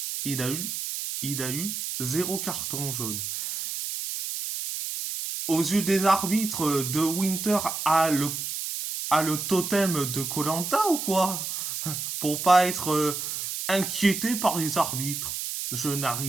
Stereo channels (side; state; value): right; noise; hiss, 4 dB below the sound